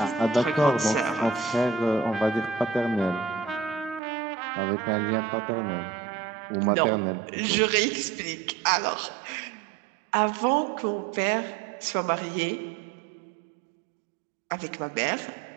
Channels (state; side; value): drops out; left; at 4.0 s